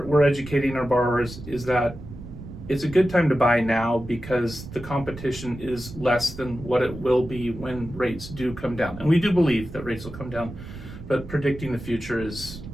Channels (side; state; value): right; noise; rumble, 13 dB below the sound